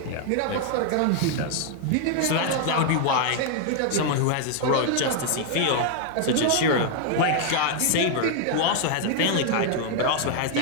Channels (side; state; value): both; different; correlation 0.00